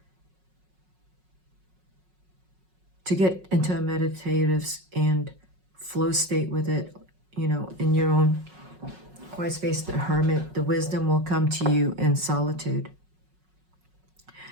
to get into a meditative and flow state with it, you know, in your own quiet space. The Hermit, the wisdom will come to you in solitude.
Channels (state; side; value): late; left; 5.4 ms